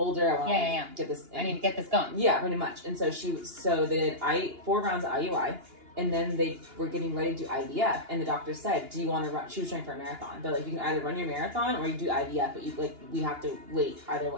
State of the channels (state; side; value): late; left; 2.8 ms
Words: I want to get this. I need to get this going." Yeah, pretty much. And so they did 4 rounds of IUI, and then they were getting ready to do IVF. And the doctor said, "Do you want to run?" She was training for a marathon, but like you can either run your marathon or you do IVF, but we have to wait either